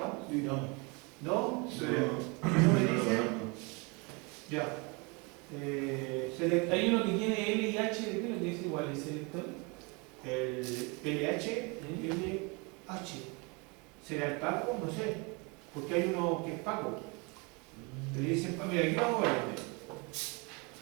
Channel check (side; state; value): left; quieter; 30.0 dB